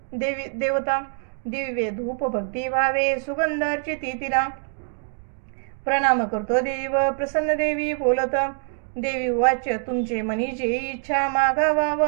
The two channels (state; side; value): silent; left; 62 dB below the other